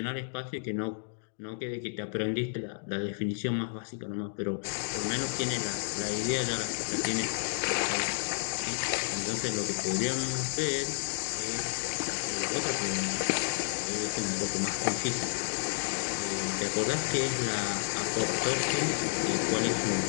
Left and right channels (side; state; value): right; silent; digital silence